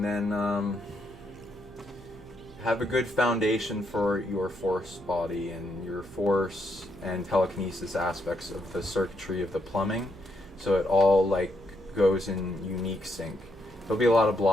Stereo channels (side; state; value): right; noise; hum, 21 dB below the sound